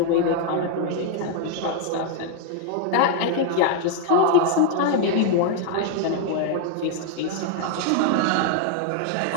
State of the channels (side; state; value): both; different; correlation 0.00